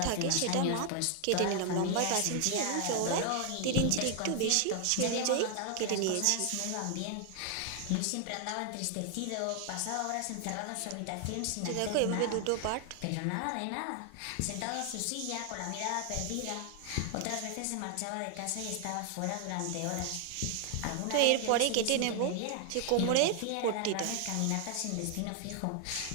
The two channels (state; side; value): different; both; correlation 0.00